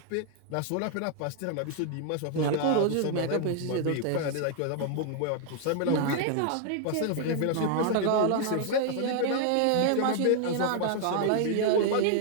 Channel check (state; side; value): different; both; correlation 0.00